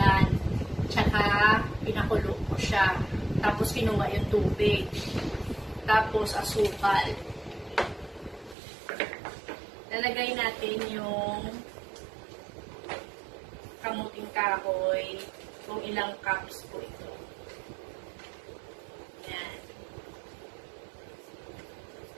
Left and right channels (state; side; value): drops out; left; at 8.6 s